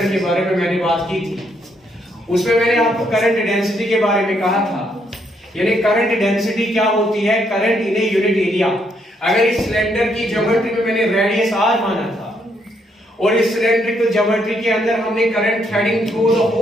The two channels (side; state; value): both; normal; correlation 0.73